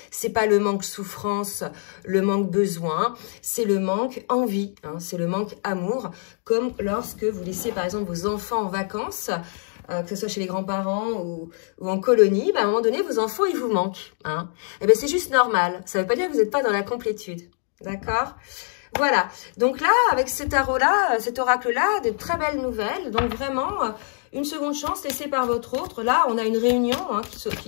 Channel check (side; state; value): right; silent; 56 dB below the other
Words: C'est pas le manque souffrance, le manque besoin, c'est le manque envie, c'est le manque amour, comme lorsque vous laissez par exemple vos enfants en vacances, que ce soit chez les grands-parents ou en colonie, à un moment donné, vos enfants, ils vous manquent. Eh bien c'est juste normal, ça ne veut pas dire que vous n'êtes pas dans la complétude, d'accord ? Voilà, donc là, avec cet tarot-là, cet oracle-là, de très belles nouvelles, donc vraiment... Une seconde chance laissée par votre autre. Là, on a une réunion